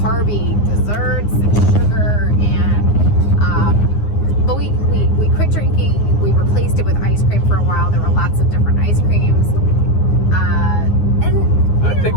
desserts and sugar but we quit drinking. We replaced it with ice cream for a while. There were lots of different ice creams. I think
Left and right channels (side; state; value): right; late; 9.7 ms